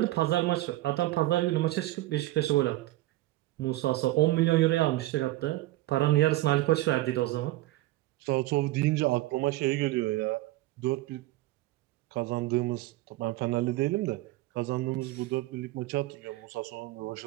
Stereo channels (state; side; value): quieter; left; 17.4 dB